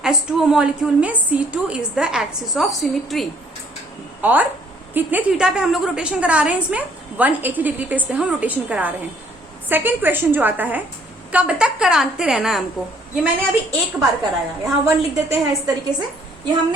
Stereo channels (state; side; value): normal; both; correlation 0.62